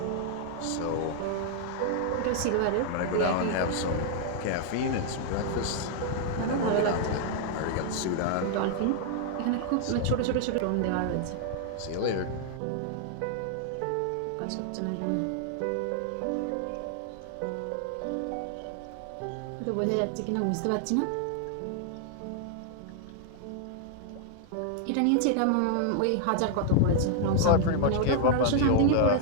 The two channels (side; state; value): both; different; correlation 0.00